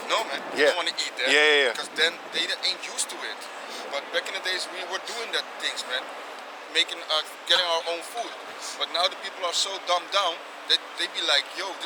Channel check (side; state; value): both; identical; correlation 1.00